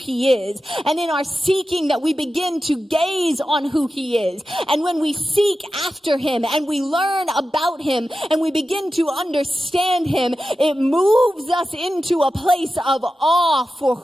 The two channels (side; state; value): both; normal; correlation 0.92